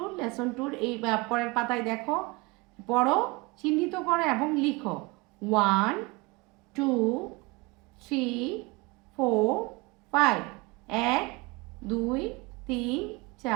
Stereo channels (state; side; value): quieter; left; 25.0 dB